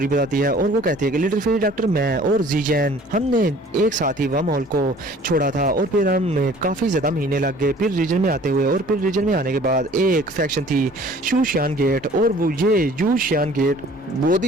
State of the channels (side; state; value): both; normal; correlation 0.51